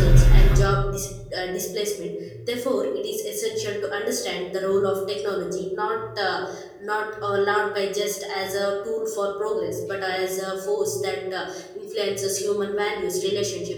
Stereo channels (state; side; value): identical; both; correlation 1.00